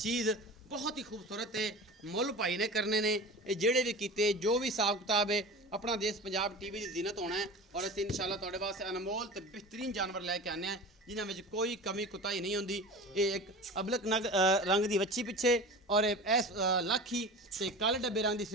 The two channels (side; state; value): both; normal; correlation 0.34